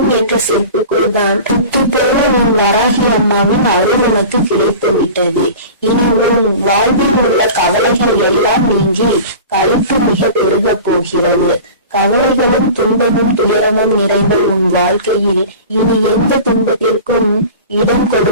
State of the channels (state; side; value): inverted; both; correlation -0.37